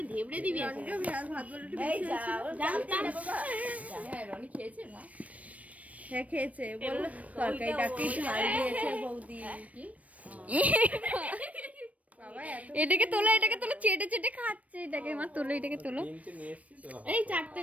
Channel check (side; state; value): left; late; 0.068 ms